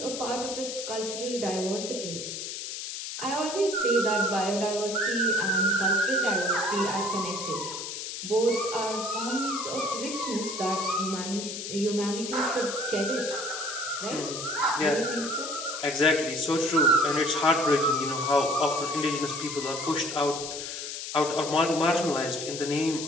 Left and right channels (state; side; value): noise; left; hiss, 6 dB below the sound